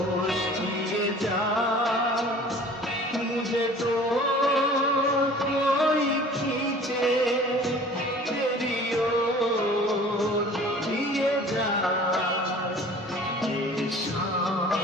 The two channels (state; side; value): normal; both; correlation 0.46